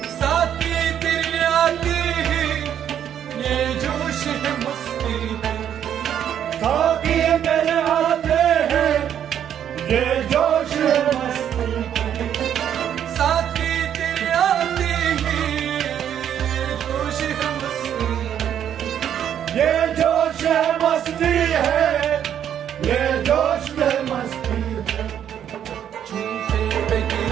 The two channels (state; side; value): quieter; left; 9.6 dB